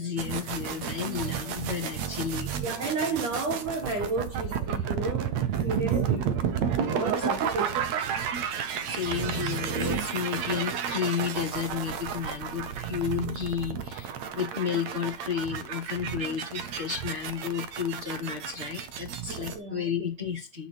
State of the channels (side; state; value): left; late; 8.7 ms